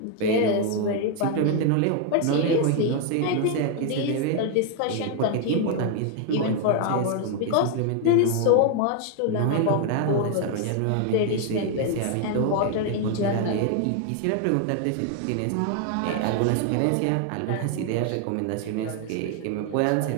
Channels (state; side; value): different; both; correlation 0.00